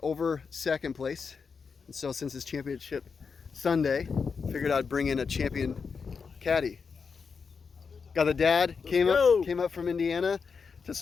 second place. And so since it's Championship Sunday, figured I'd bring in a champion caddy. Got the dad, came up from Indiana to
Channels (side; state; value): right; quieter; 5.5 dB